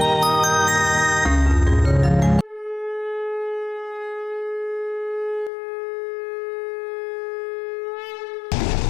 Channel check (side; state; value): right; drops out; at 5.5 s